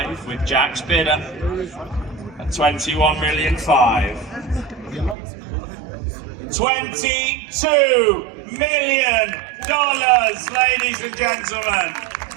with Jack's bidder. At 21,500,000. $22 million, ladies and gentlemen.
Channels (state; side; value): drops out; left; at 5.2 s